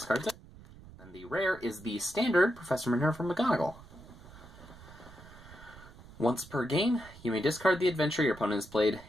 it. Then the rare is the standard Professor Minerva McGonagall. Once per game, you may discard the adventure your opponent has played.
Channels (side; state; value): right; noise; rumble, 19 dB below the sound